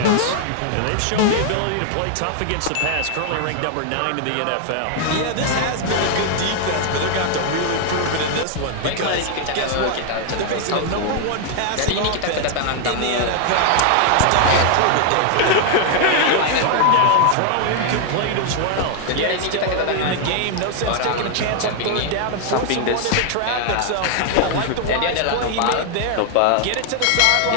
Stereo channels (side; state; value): both; different; correlation 0.00